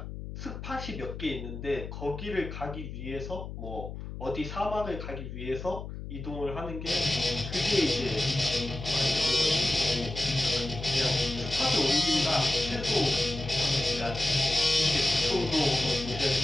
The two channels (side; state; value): left; noise; hum, 9 dB below the sound